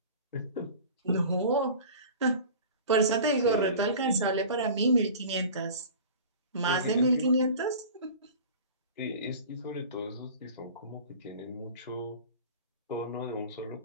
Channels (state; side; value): inverted; both; correlation -0.39